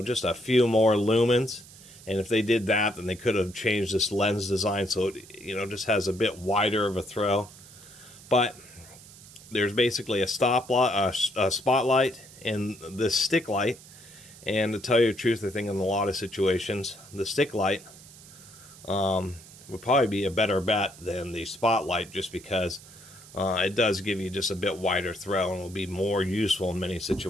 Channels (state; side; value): noise; right; hiss, 20 dB below the sound